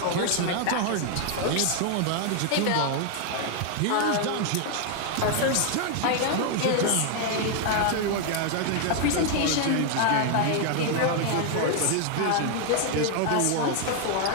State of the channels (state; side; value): different; both; correlation 0.00